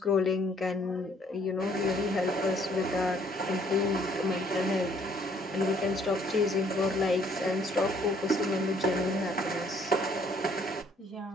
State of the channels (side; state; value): both; normal; correlation 0.63